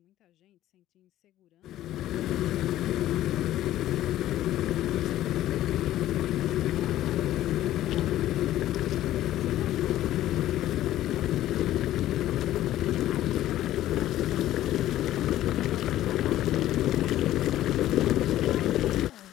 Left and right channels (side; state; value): right; quieter; 13.7 dB